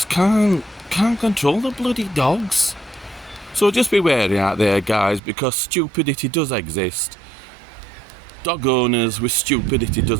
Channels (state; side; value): drops out; left; at 5.2 s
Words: can't control the bloody dogs. So just be wary out there, guys, because stupidity does exist. dog owners with stupidity